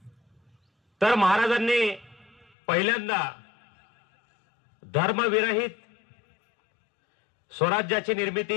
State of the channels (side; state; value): right; drops out; at 2.5 s